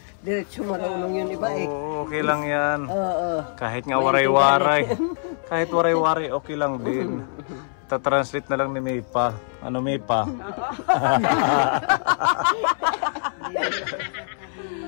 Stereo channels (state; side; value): silent; right; 62 dB below the other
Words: diretso marunong yun iba eh. Oo, okay lang yan. Oo. Kahit nga waray-waray. Kahit waray-waray, okay lang din. Ta-translate na lang ni Maypa. Ano Maypa?